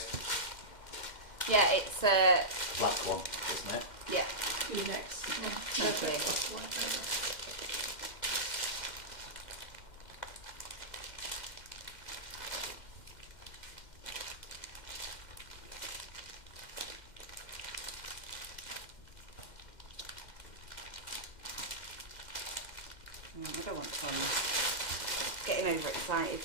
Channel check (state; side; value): late; right; 2.1 ms